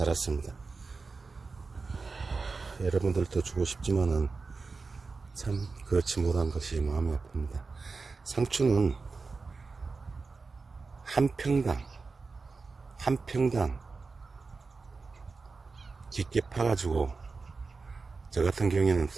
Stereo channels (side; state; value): left; quieter; 4.3 dB